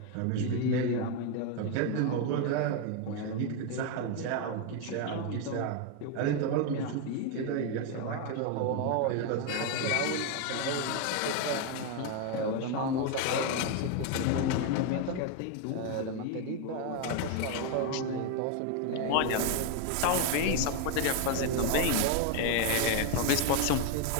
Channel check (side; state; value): both; different; correlation 0.01